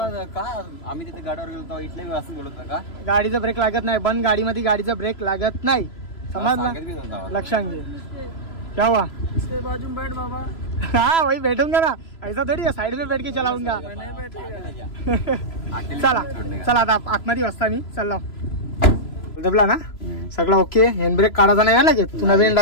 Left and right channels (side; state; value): right; late; 3.0 ms